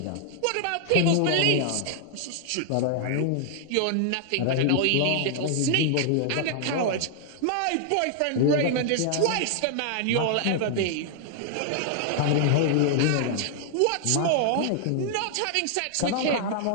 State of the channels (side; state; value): both; different; correlation 0.00